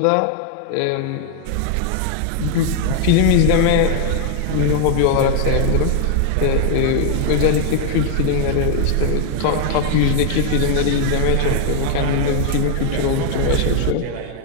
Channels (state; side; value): different; both; correlation 0.00